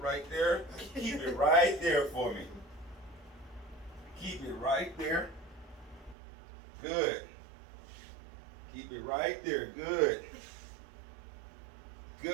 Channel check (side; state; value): left; drops out; at 6.2 s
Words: there. Keep it right there for me. Keep it right there. Good. Keep it right there. Good.